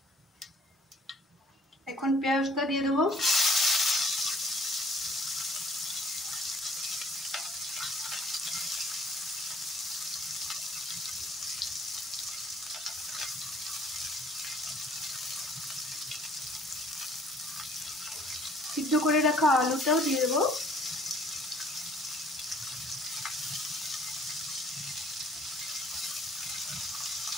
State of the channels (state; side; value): normal; both; correlation 0.58